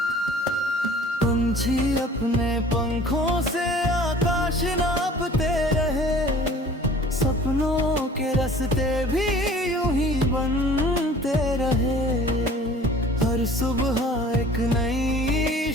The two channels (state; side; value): normal; both; correlation 0.48